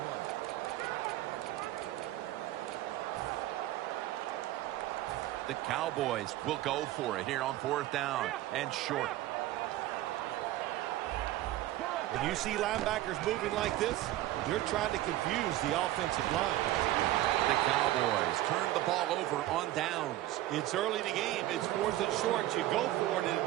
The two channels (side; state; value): left; quieter; 15.2 dB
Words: The Cowboys will go for it here on 4th down and short. When you see linebackers moving like this, they're trying to confuse the offensive line. The Cowboys turn the ball over on downs. It's early in the game. It's 4th and short. You go for it and